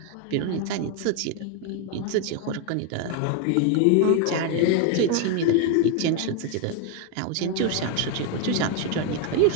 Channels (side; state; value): both; different; correlation 0.01